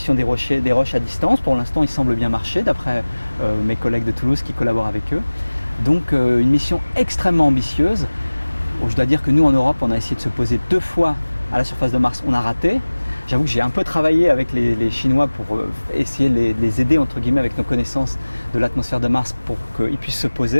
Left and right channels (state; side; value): inverted; both; correlation -1.00